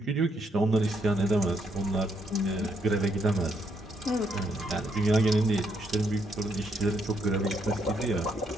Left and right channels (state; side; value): normal; both; correlation 0.74